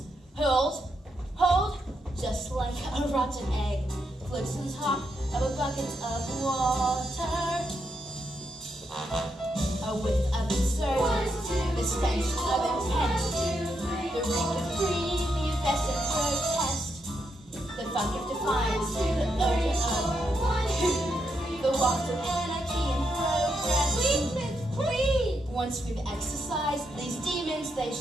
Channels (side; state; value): both; normal; correlation 0.81